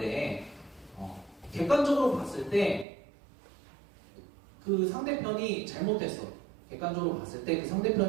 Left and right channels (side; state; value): left; drops out; at 2.9 s